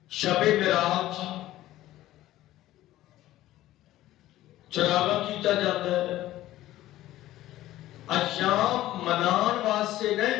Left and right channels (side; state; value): right; quieter; 15.0 dB